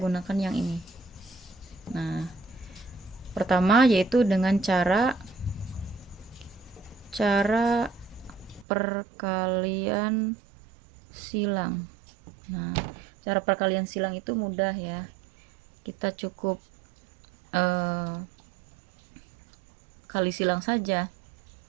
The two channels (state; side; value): drops out; left; at 8.7 s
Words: yang ini. Nah, pertama yaitu dengan cara perkalian silang. Nah, cara perkalian silang itu mudah ya. Kita cukup kali silang saja.